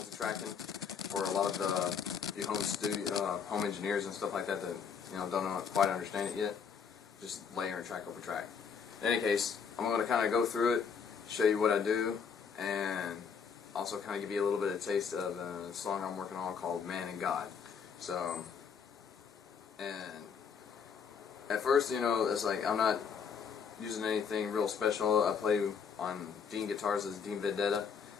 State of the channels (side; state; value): right; quieter; 6.4 dB